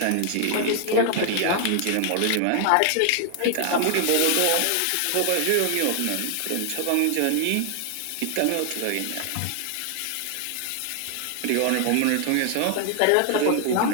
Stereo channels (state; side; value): different; both; correlation 0.00